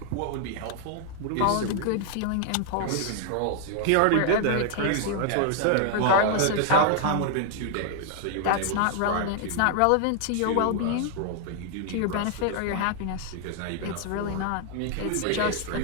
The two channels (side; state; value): both; different; correlation 0.00